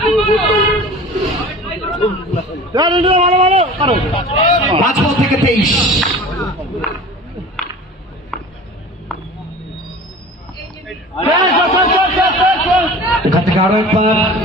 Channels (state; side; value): normal; both; correlation 0.39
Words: 5 বল থেকে 23। এখান থেকে আরো একবার